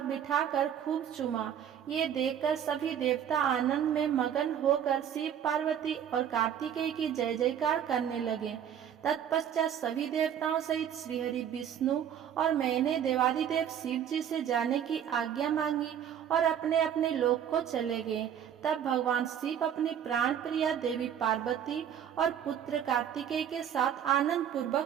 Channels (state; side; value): quieter; left; 9.2 dB